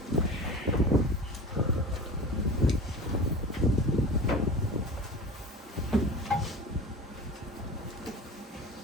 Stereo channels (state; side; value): normal; both; correlation 0.34